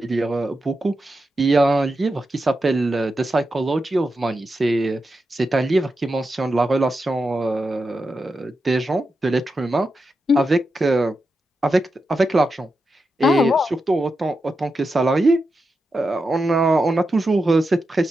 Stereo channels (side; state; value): both; normal; correlation 0.88